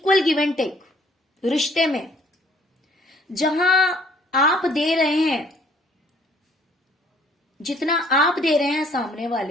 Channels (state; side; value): normal; both; correlation 0.60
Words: गिव एंड टेक रिश्ते में, जहां आप दे रहे हैं, जितना आप दे रहे हैं सामने